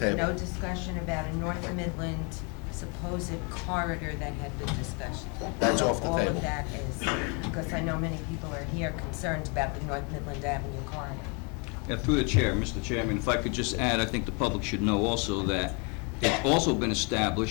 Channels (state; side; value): quieter; right; 33.9 dB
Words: no discussion about a North Midland supposed corridor that had been discussed. That's off the All table. of that is, because I know many people are here concerned about the North Midland Avenue corridor. Yeah, through the chair, Mr. Chairman, if I could just add, I think the public should know also that it's also been